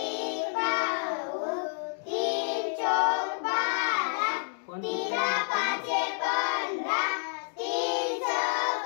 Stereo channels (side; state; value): right; silent; digital silence